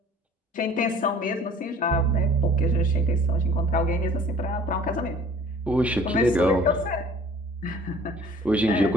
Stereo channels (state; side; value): normal; both; correlation 0.50